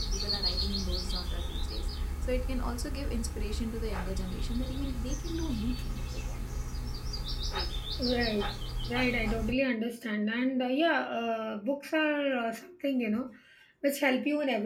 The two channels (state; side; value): identical; both; correlation 1.00